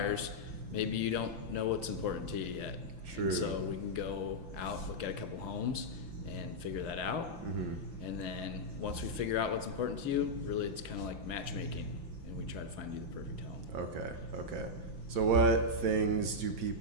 maybe you don't know what's important to you yet. True. And so we can go out, look at a couple homes, and figure that out. And then once we figure out what's important to you, really it's kind of like matchmaking, and we try to find you the perfect home. Okay. So what things do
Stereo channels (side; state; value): left; late; 5.9 ms